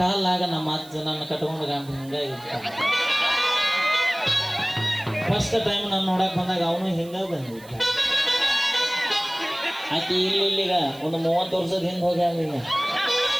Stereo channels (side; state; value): right; noise; hiss, 23 dB below the sound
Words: ನಮ್ಮ ಅಜ್ಜ ನನ್ನ ಕಟ್ಕೊಂಡು ಗಂಡ ಹಿಂಗಾಗಿತ್ತ. ಫಸ್ಟ್ ಟೈಮ್ ನಾನು ನೋಡಕ್ ಬಂದಾಗ ಅವನು ಹಿಂಗ ಬಂದಿದ್ದ. ಆಕೆ ಇಲ್ಲಿಗ ಒಂದು 30 ವರ್ಷದ ಹಿಂದೆ ಹೋಗಿ ಈಗ